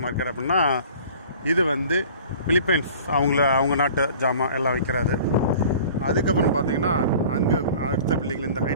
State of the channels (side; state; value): both; inverted; correlation -0.45